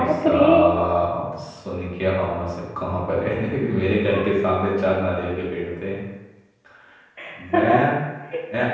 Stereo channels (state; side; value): identical; both; correlation 1.00